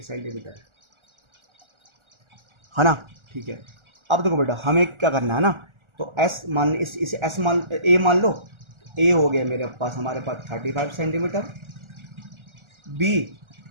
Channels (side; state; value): left; late; 1.4 ms